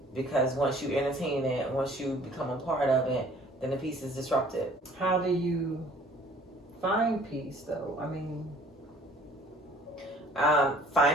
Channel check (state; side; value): normal; both; correlation 0.54